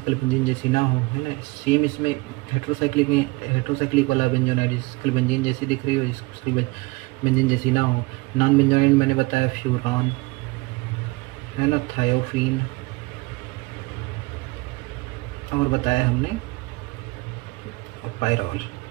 बेंजीन जैसी ना हो, है ना। सेम इसमें हेट्रोसाइक्लिक में, हेट्रोसाइक्लिक वाला बेंजोनाइड जिसकी शक्ल बेंजीन जैसी दिख रही हो, जिसकी शक्ल बेंजीन जैसी ना हो। नॉन बेंजोनाइड मैंने बताया फ्यूरान, है ना, थायोफीन, और बताया हमने और पायरॉल,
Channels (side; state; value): left; quieter; 24.0 dB